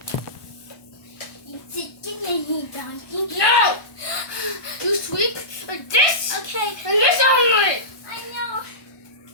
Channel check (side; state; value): right; late; 1.2 ms